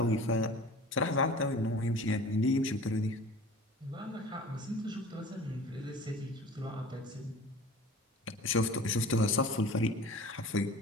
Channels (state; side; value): normal; both; correlation 0.41